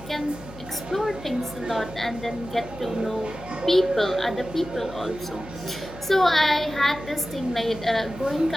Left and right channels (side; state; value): left; noise; hum, 17 dB below the sound